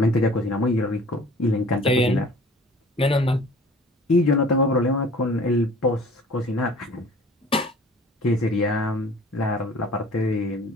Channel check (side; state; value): both; normal; correlation 0.48